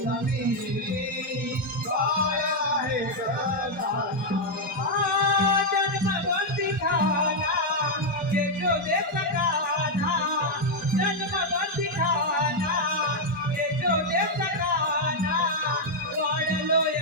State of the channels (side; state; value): both; normal; correlation 0.00